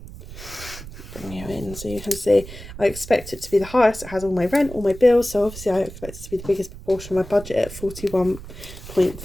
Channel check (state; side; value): noise; right; rumble, 14 dB below the sound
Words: Bring you in so you can see. I expect it to be the highest. It has all my rent, all my bills, so obviously I expect it to be the biggest proportion of my budget at